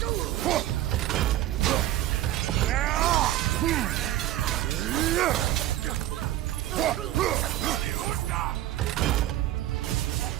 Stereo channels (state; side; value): quieter; left; 14.1 dB